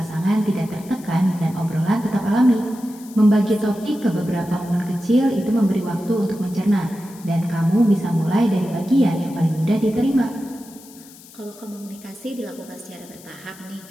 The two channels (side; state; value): left; noise; hiss, 21 dB below the sound